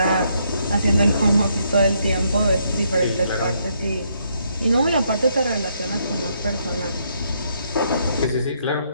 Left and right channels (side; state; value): both; inverted; correlation -0.74